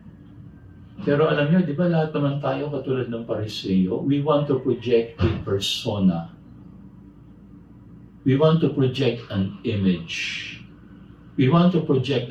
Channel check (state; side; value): identical; both; correlation 1.00